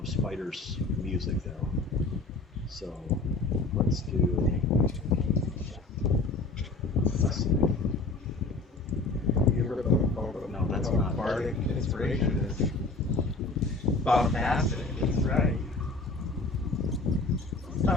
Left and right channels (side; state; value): right; quieter; 3.4 dB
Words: spiders music though. So let's do. Let's see. like inspiration is bombastic. That's right. This